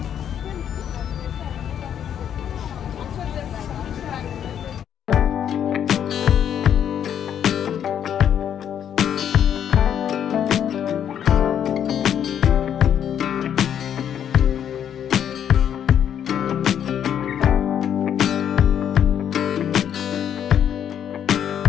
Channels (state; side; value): quieter; right; 9.3 dB